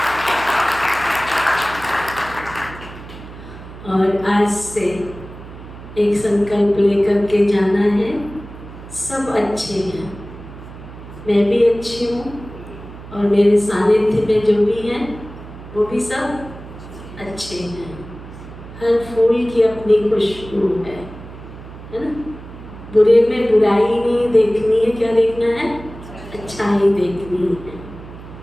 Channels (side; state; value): right; noise; hum, 15 dB below the sound